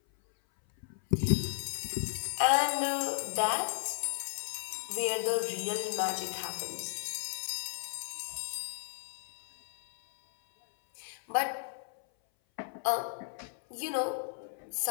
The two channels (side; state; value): right; silent; 55 dB below the other